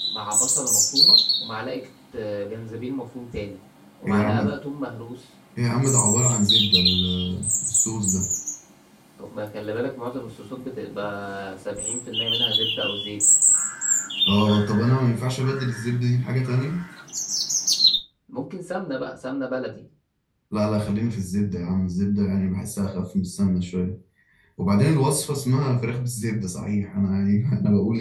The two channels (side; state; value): both; identical; correlation 1.00